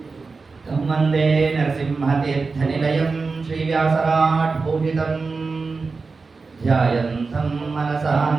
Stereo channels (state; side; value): quieter; left; 4.3 dB